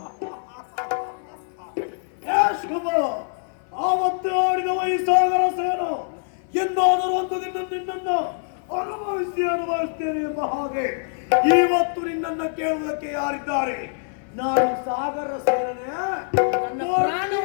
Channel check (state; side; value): silent; right; 56 dB below the other